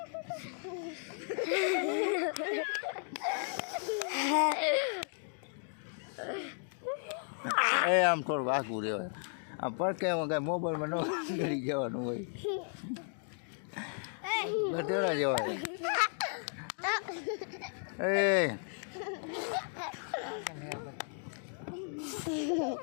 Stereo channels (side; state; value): right; silent; 55 dB below the other